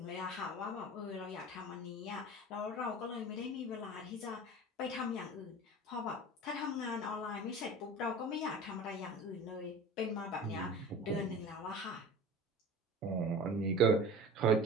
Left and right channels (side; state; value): both; normal; correlation 0.36